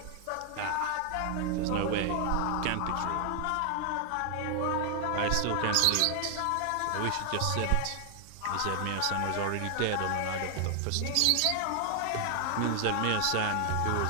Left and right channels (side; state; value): both; different; correlation 0.00